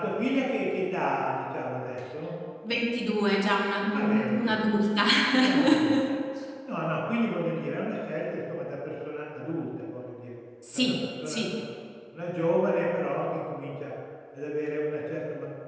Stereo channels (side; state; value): both; identical; correlation 1.00